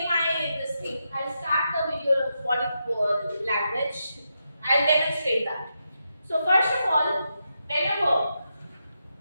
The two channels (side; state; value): both; inverted; correlation -0.85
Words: this thing. I'll start the video of body language. I'll demonstrate that. So first of all, whenever